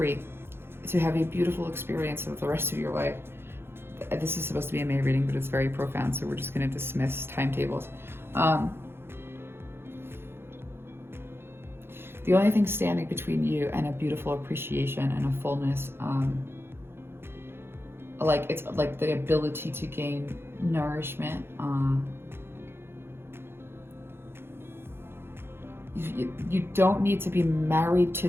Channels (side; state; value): left; late; 0.11 ms